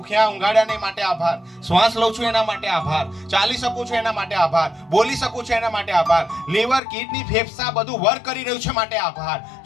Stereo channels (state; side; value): drops out; right; at 6.8 s